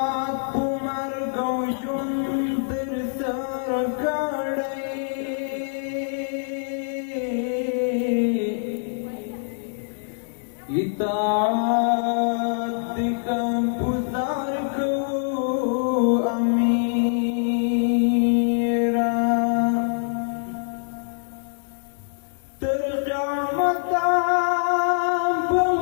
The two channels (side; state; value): right; silent; digital silence